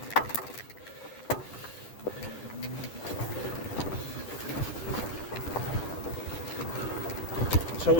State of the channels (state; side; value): late; right; 9.9 ms